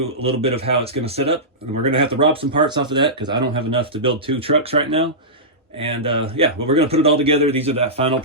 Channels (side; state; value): both; normal; correlation -0.16